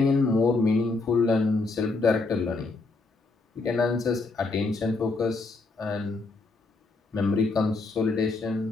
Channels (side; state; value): right; quieter; 3.6 dB